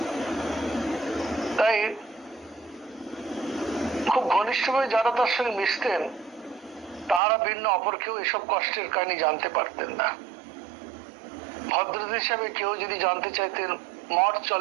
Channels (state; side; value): drops out; left; at 7.2 s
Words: তাই খুব ঘনিষ্ঠভাবে যারা তার সঙ্গে মিশতেন তারা ভিন্ন অপর কেউ এসব কষ্টের কাহিনী জানতে পারতেন না। ভদ্রতা হিসাবে কেউ যদি জানতে চাইতেন মঠ